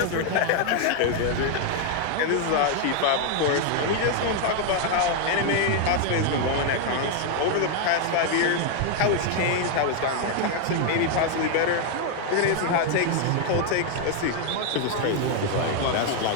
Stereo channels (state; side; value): different; both; correlation 0.00